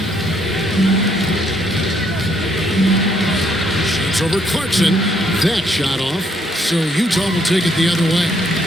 Shoots over Clarkson. That shot off. So Utah will take it the other way.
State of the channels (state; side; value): normal; both; correlation 0.70